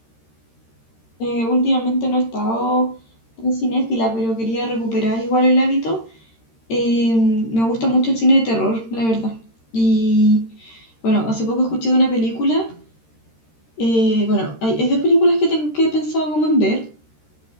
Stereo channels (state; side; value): late; right; 13 ms